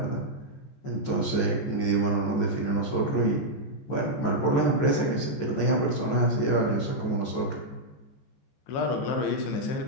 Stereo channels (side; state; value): right; late; 14 ms